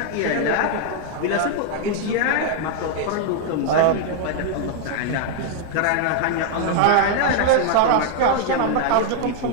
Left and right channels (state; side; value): different; both; correlation 0.00